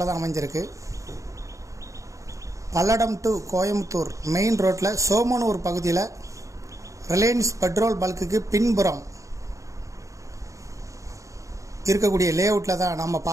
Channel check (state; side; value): late; left; 0.15 ms